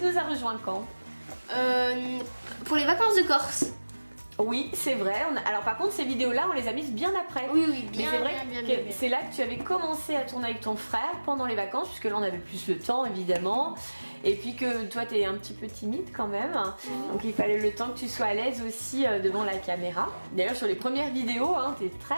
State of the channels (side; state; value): both; inverted; correlation -1.00